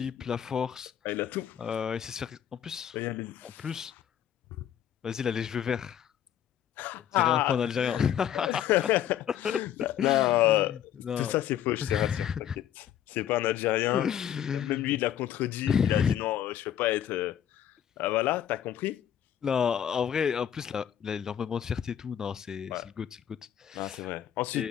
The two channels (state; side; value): quieter; right; 10.2 dB